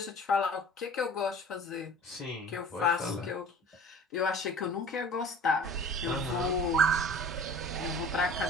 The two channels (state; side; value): normal; both; correlation 0.44